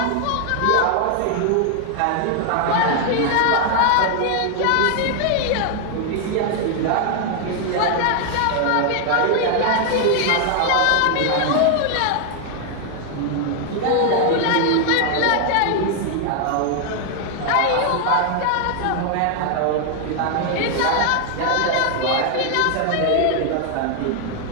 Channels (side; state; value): both; different; correlation 0.00